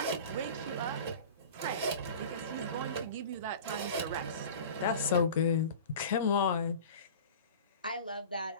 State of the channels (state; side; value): inverted; both; correlation -0.37